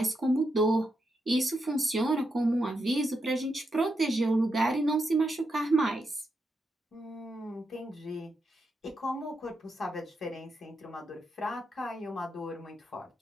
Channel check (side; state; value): both; normal; correlation 0.84